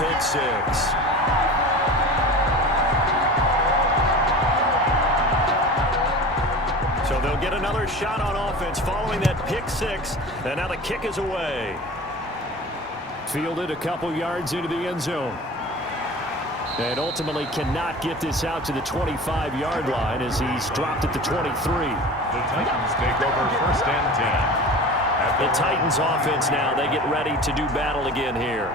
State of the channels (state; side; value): normal; both; correlation 0.36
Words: pick 6. So they'll get another shot on offense following that pick 6, and now the kick is away. Fielded a couple yards into the end zone. And ultimately cannot get this out to the 25-yard line as he's dropped at the 23. The Titans take over 1st and 10. The Titans offense now, they get ready to do battle again